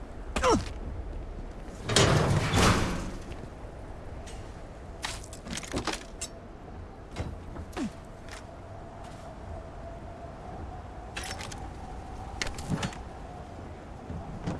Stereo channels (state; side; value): identical; both; correlation 1.00